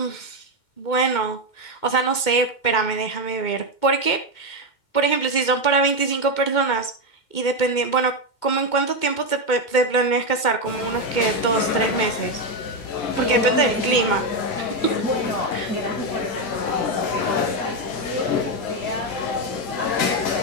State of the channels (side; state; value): right; late; 2.2 ms